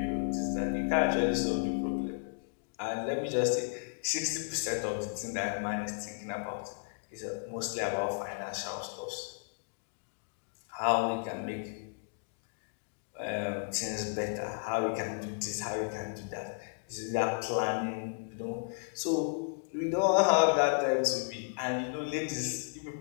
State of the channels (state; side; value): silent; right; digital silence